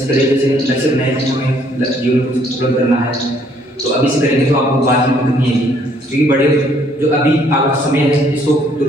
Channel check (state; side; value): normal; both; correlation 0.65